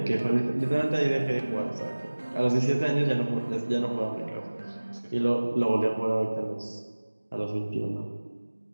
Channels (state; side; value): inverted; both; correlation -1.00